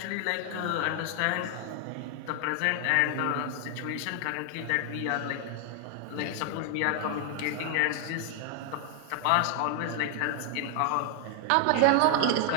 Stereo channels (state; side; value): different; both; correlation 0.00